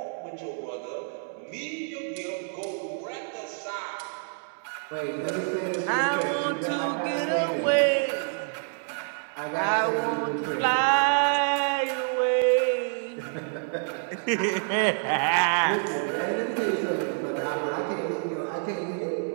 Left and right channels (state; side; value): silent; left; 60 dB below the other